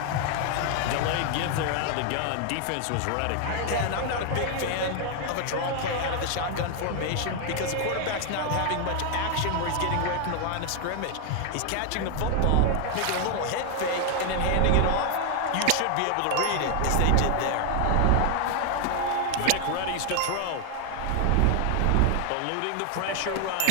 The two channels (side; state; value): both; different; correlation 0.00